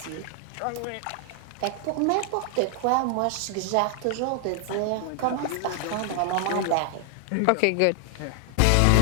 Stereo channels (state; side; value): different; both; correlation 0.00